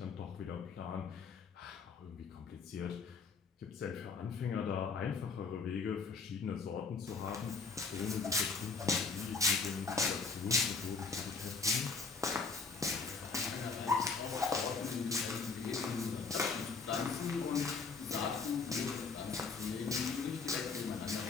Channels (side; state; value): right; quieter; 4.7 dB